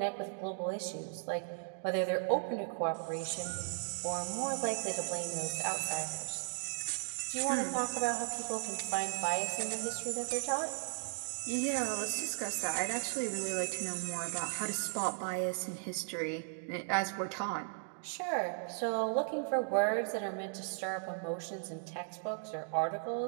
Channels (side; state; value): left; silent; digital silence